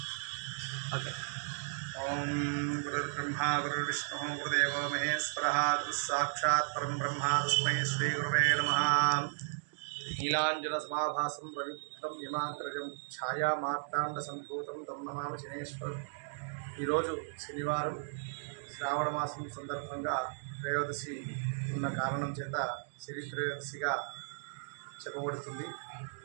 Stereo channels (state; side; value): silent; left; digital silence